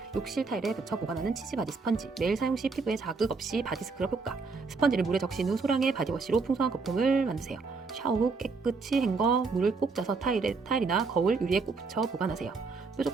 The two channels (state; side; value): quieter; left; 4.4 dB